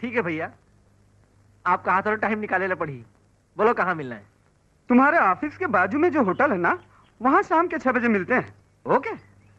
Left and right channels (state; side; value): identical; both; correlation 1.00